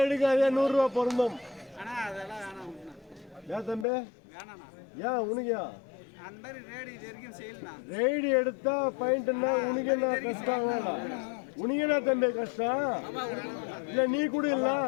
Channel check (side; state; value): right; drops out; at 3.9 s